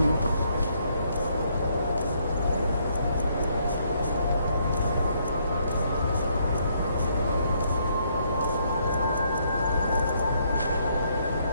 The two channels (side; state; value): both; inverted; correlation -0.71